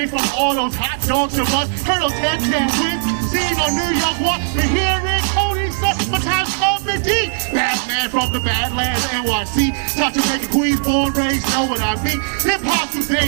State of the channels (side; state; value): left; silent; 67 dB below the other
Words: from all those hot dogs of us. Heard those 10 wins, seen on New York Walk. The hearing, Cody, the time's coming deep. Batman from the Badlands, NYC. Not to make a queen, born, raised, know what I mean. Hip hop these